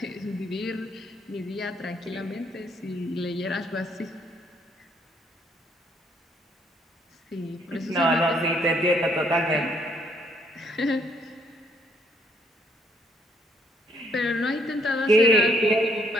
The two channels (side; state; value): both; normal; correlation 0.68